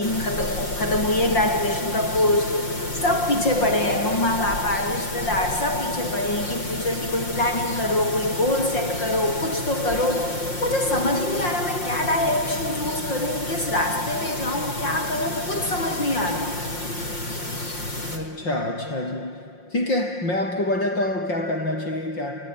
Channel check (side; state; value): right; late; 5.6 ms